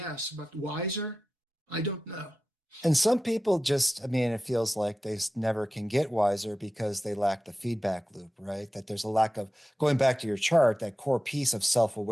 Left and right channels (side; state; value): both; normal; correlation 0.94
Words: but wiser, I don't know. And some people just, I mean, it feels like they never can get wiser because they lack the feedback loop, right? That there's a lack of, going back to your chart, that core piece of